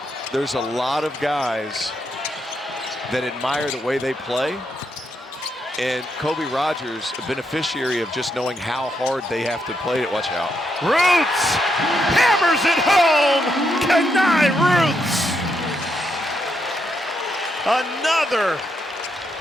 there's a lot of guys that admire the way they play. And Kobe Rogers, a beneficiary of just knowing how hard they have to play it. Watch out. Rooths hammers it home. Khani Rooths. Another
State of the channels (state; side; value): normal; both; correlation 0.80